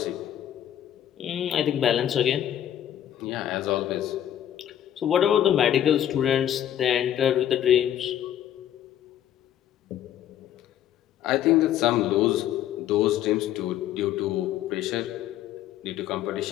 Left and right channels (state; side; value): quieter; right; 11.1 dB